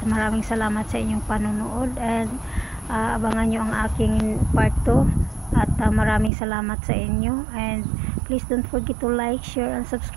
maraming salamat sa inyong panonood and abangan nyo ang aking part 2 at maraming salamat sa inyo and please don't forget to like, share and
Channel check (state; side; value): drops out; left; at 6.3 s